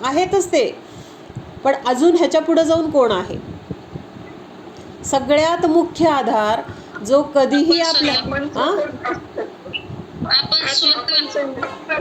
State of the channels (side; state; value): both; identical; correlation 1.00